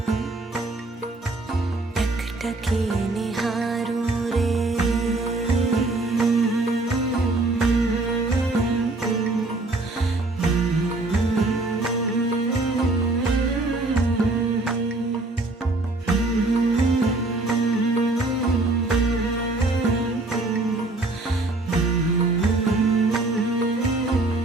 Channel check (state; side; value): quieter; left; 3.0 dB